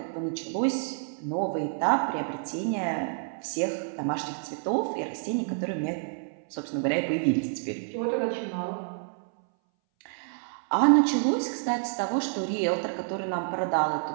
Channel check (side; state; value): left; silent; 59 dB below the other